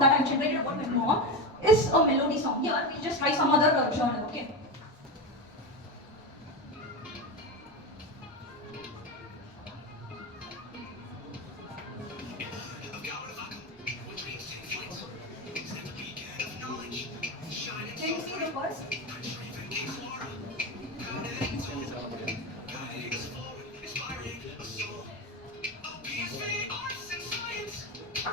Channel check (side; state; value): both; normal; correlation 0.18